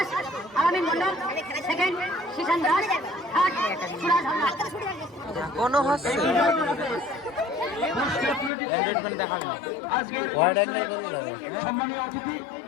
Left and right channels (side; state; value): right; drops out; at 8.5 s